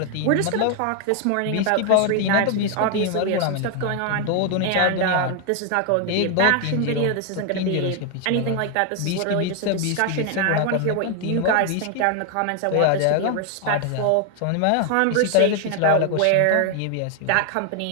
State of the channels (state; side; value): different; both; correlation 0.01